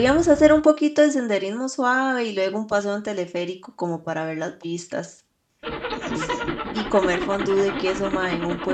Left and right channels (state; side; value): identical; both; correlation 1.00